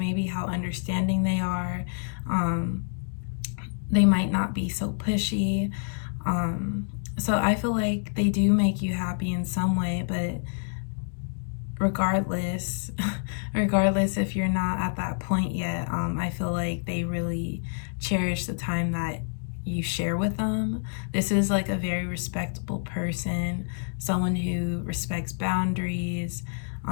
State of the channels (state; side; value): silent; right; digital silence